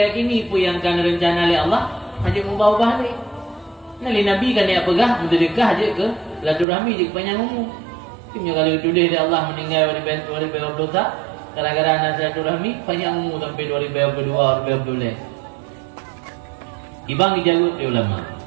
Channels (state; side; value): drops out; left; at 6.7 s